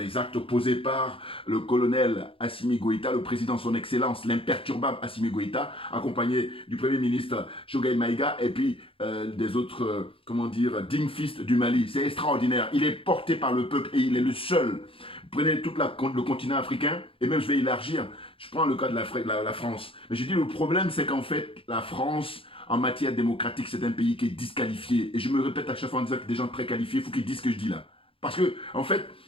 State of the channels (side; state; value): right; late; 0.26 ms